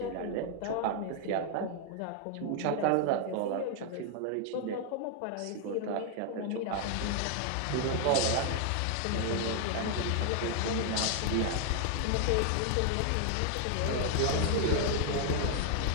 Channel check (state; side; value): different; both; correlation 0.00